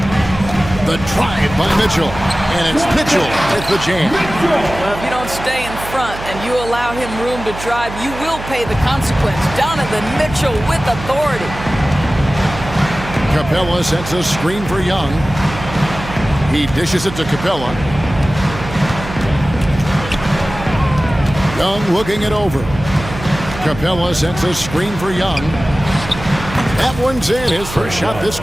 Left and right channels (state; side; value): noise; right; hum, 11 dB below the sound